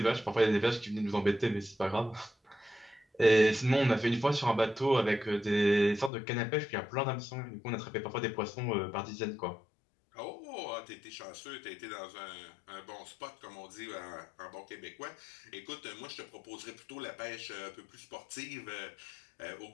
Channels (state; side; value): drops out; right; at 6.1 s